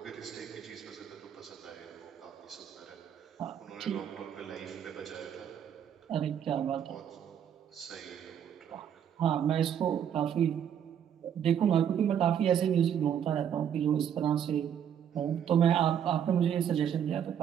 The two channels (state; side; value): quieter; left; 8.9 dB